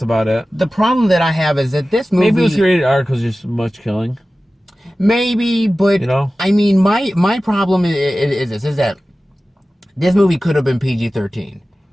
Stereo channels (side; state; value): both; normal; correlation 0.96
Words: about it. The problem that I have is that this movie... Maybe it was rated R because there's so much killing. Maybe, but, you know? I mean, my problem is that this movie could have been PG-13,